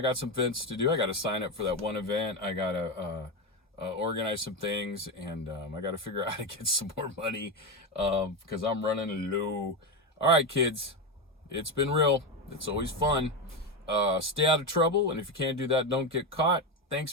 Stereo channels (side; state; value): both; normal; correlation 0.13